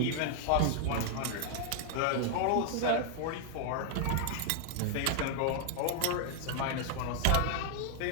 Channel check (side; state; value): both; different; correlation 0.00